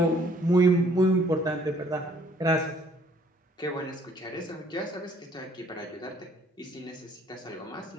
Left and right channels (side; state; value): both; normal; correlation 0.61